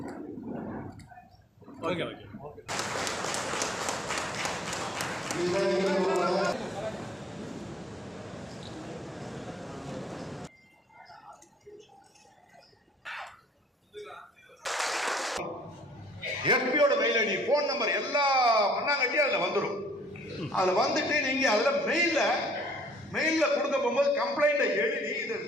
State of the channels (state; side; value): normal; both; correlation 0.59